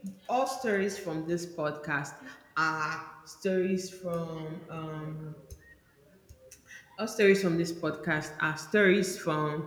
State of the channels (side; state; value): both; identical; correlation 1.00